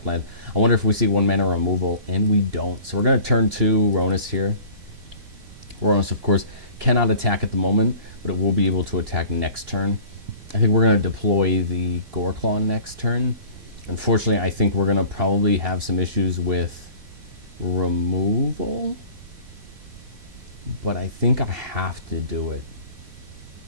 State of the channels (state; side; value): late; left; 3.7 ms